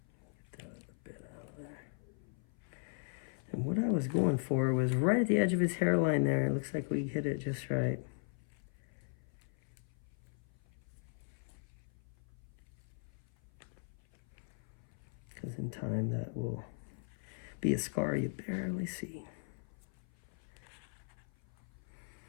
Get that other bit out of there. And what I was going for was right at the edge of his hairline there. It looks like we hit it just right. Because in time that will be a scar you barely see.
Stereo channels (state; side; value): silent; right; 52 dB below the other